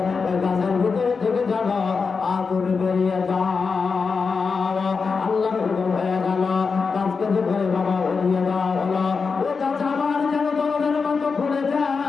ওই গাছের ভিতরে থেকে যেন আগুন বেরিয়ে যাও। আল্লাহর হুকুম হয়ে গেল, গাছকে যে ঘরে বাবা উড়িয়ে দেওয়া হলো। ও গাছ আবার যেন দরজার মতো খুলে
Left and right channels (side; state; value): right; quieter; 5.0 dB